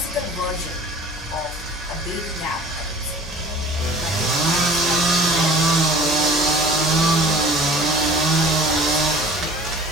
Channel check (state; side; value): normal; both; correlation 0.45